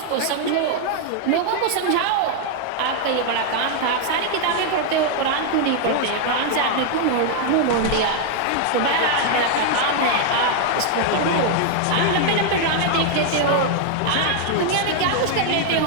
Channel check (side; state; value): both; different; correlation 0.00